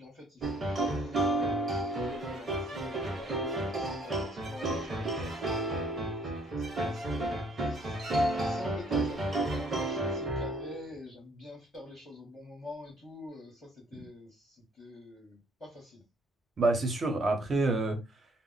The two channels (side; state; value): both; normal; correlation 0.63